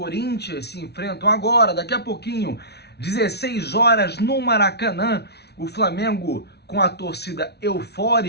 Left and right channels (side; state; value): right; late; 0.49 ms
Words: se enfrentam agora, daqui a pouquinho, 16 horas no Maracanã. O Flamengo com a torcida